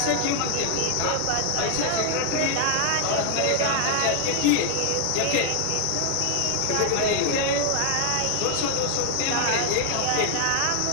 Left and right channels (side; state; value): both; different; correlation 0.00